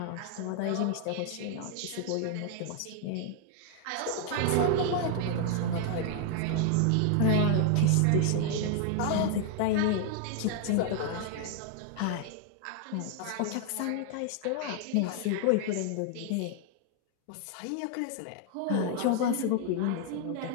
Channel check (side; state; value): both; different; correlation 0.00